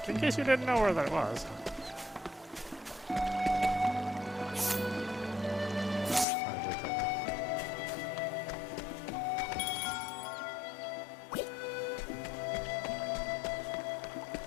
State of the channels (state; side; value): drops out; right; at 6.2 s